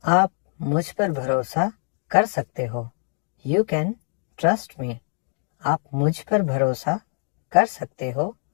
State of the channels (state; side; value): silent; right; digital silence